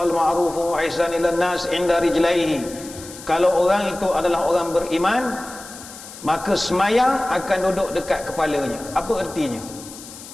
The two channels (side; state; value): left; noise; hiss, 15 dB below the sound